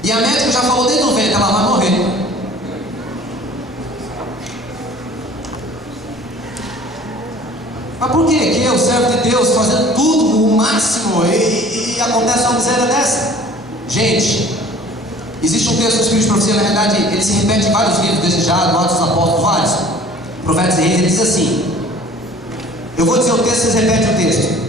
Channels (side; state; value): both; normal; correlation 0.49